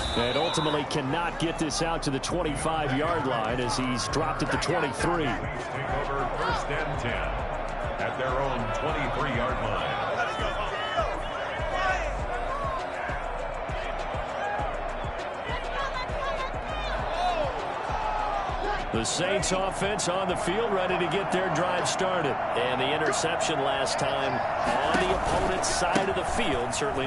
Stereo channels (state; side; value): identical; both; correlation 1.00